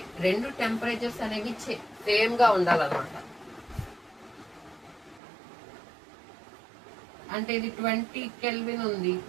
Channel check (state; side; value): drops out; left; at 5.2 s